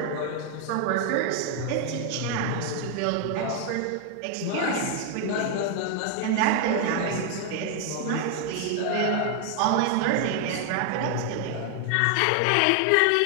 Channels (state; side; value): different; both; correlation 0.00